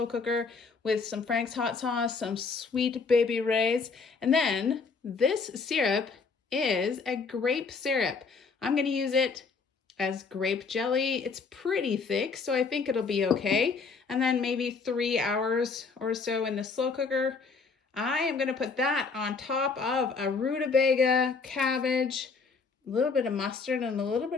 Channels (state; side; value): quieter; right; 4.8 dB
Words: cooker with some Frank's hot sauce, some sweet baby rays, and then this syrup is a grape syrup. I'm going to use it as grape jelly. It's pretty thick, so I think it'll be okay. And then maybe 3 hours or so in the slow cooker. I am going to put that on top of a rutabaga, cabbage, a little bit of mustard, and a little